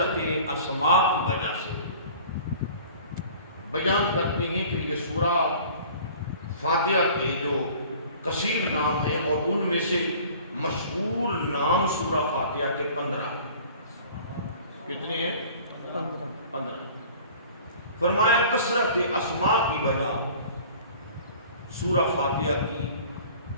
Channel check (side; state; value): both; inverted; correlation -0.46